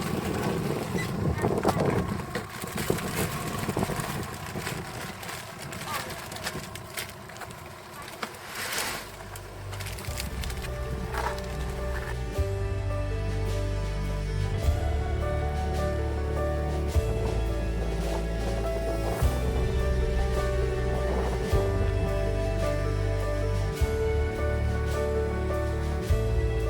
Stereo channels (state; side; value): identical; both; correlation 1.00